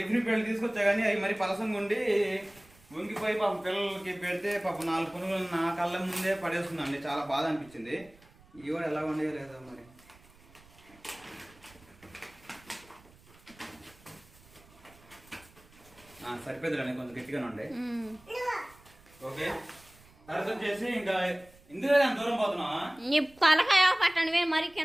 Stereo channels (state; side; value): noise; right; rumble, 26 dB below the sound